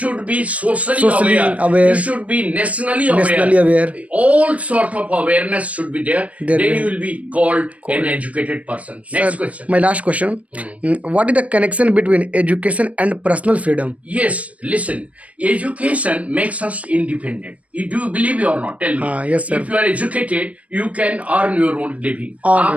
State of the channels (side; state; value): left; late; 0.066 ms